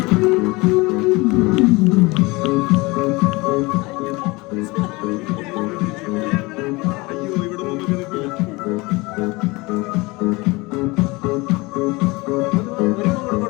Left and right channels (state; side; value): quieter; right; 23.7 dB